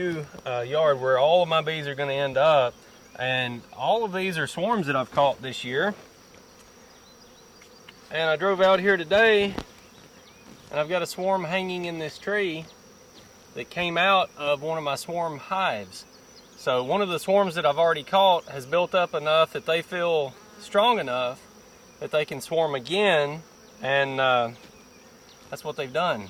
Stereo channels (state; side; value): identical; both; correlation 1.00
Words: yard where all of my bees are going to end up, and all of these are swarms that I've caught this year. And I drove out here today, and I've got a swarm hanging in this tree that came out of one of my swarm hives. So one of the swarms that I've already caught has built up enough that they feel strong enough that they can swarm again, and that's what they've done.